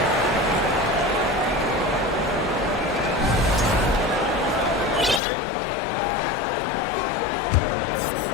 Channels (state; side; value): drops out; right; at 5.2 s